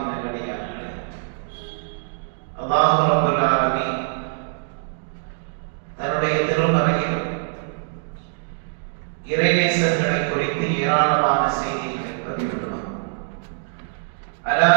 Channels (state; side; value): silent; left; digital silence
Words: நல்லடியார்களே, அல்லாஹ் ரப்பல் ஆலமீன் தன்னுடைய திருமறையில் இறைநேசர்களை குறித்து ஏராளமான செய்திகளை பதிவிடுவார். அலா